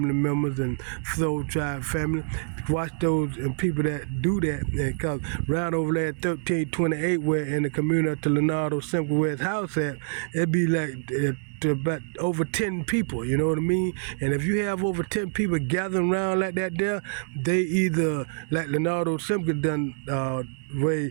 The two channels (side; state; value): left; silent; 61 dB below the other